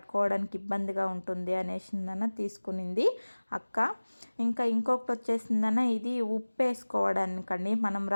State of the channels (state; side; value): inverted; both; correlation -1.00